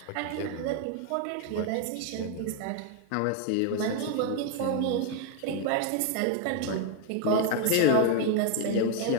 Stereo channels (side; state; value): both; different; correlation 0.01